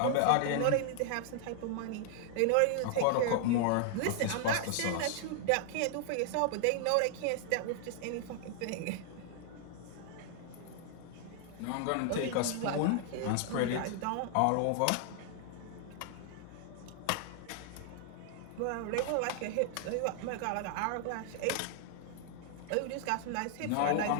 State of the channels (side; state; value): both; different; correlation 0.00